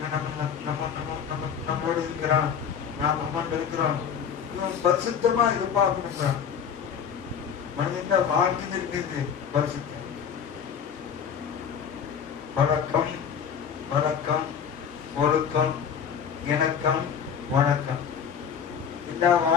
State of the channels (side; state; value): right; quieter; 7.6 dB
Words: நம்மளோடு இருக்கிறான், நாம் அம்மாண்டு இருக்கிறோம். இவன் பரிசுத்தமா எதிர்பார்க்கிறான். மனிதன் வாழ்க்கை இருக்கிறது பரிசுத்தம். வழக்கம், வழக்கம், ஒழுக்கம், இணக்கம், வணக்கம். எல்லா